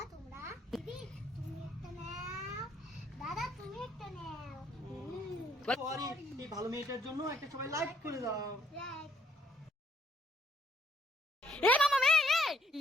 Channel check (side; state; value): both; normal; correlation 0.67